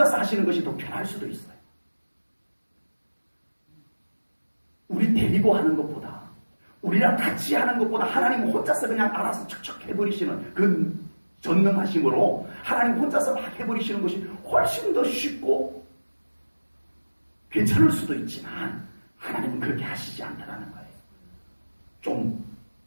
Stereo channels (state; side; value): inverted; both; correlation -1.00